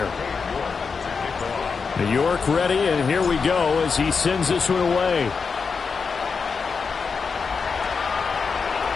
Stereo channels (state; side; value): quieter; right; 5.3 dB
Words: New York ready, and here we go as he sends this one away.